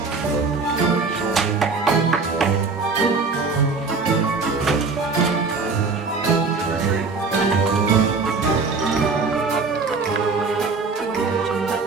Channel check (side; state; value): left; quieter; 4.4 dB